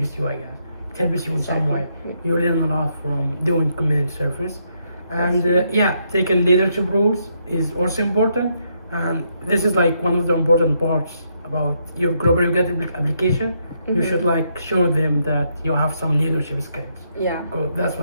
you, I guess. It helps you in some way. You learn a lot from doing community service. And That's yeah, taking leadership roles is also important. And this is like one of the important parts about your Global UGRAD application. You Mhm. should like show them that you have some leadership skills. Yeah. Good, that's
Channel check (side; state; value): both; inverted; correlation -0.77